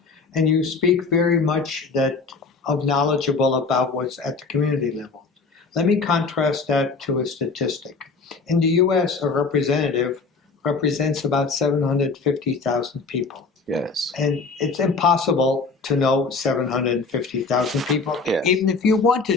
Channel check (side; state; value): right; quieter; 4.4 dB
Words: And you speak very much knowledgeable about what's at the community level. Let me contrast that to a statistic. In the US, a representative represents about 750,000 people. Yes. And it's impossible to know 750,000 people, yes. even if you